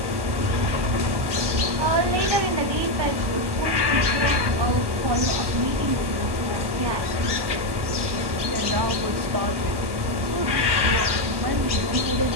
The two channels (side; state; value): left; late; 1.2 ms